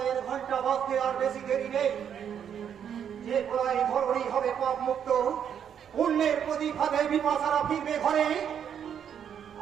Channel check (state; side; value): quieter; left; 8.5 dB